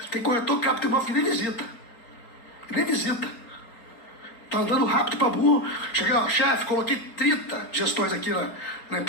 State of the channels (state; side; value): late; right; 4.4 ms